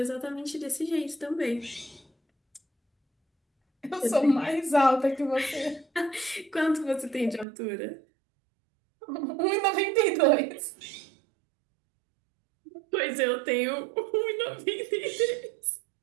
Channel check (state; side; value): drops out; left; at 7.5 s